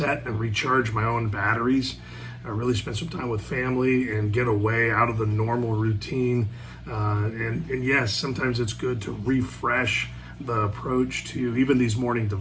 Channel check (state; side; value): identical; both; correlation 1.00